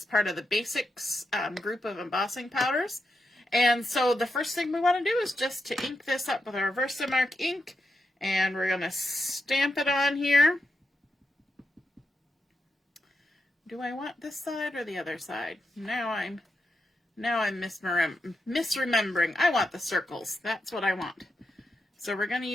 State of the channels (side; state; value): both; normal; correlation 0.86